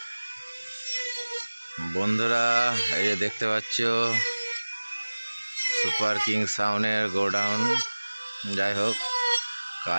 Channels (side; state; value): both; inverted; correlation -1.00